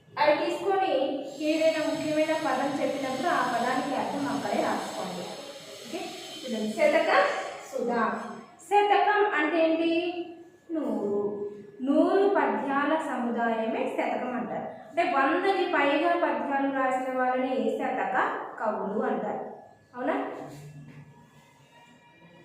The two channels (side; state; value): both; identical; correlation 1.00